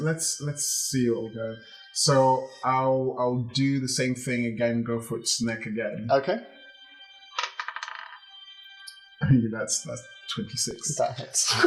see what we'll go. So I'll do the same thing again. Go for its neck again. Okay. I mean, that's 26. That hits.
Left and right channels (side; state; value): both; identical; correlation 1.00